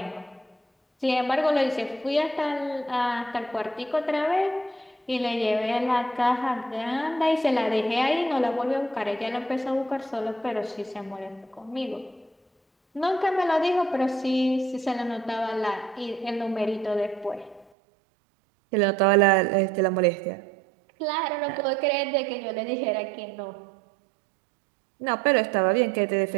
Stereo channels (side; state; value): left; drops out; at 17.7 s